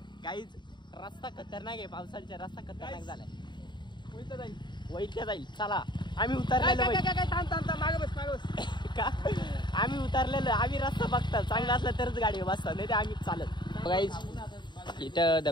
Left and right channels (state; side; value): late; right; 0.22 ms